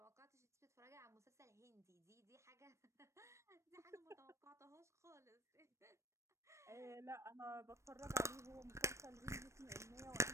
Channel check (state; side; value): late; left; 0.14 ms